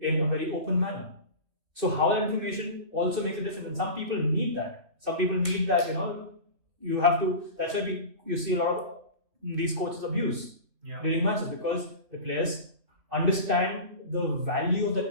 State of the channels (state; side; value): late; left; 3.2 ms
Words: a very open manner. So how that information also makes a difference, and some people need that. Some people need that. You have to. That's why you see a lot of these coaches abuse during matches, because the players understand the value of